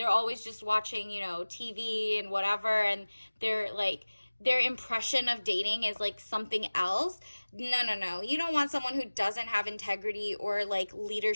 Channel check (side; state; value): both; inverted; correlation -1.00